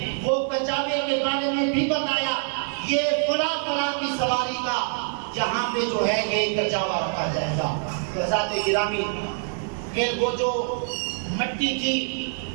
وہ کجاوے کے بارے میں بھی بتایا، یہ فلاں کی سواری کا یہاں پہ جو ہے یہ کجاوا رکھا جائے گا۔ حضرات گرامی، پھر وہ جو مٹی تھی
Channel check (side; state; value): left; silent; 62 dB below the other